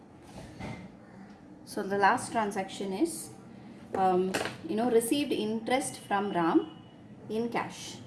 So the last transaction is received interest from Ram in cash.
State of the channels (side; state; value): both; identical; correlation 1.00